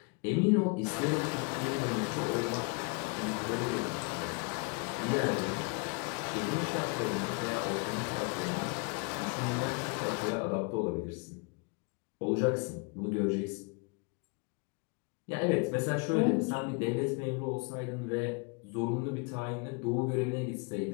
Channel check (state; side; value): quieter; right; 33.4 dB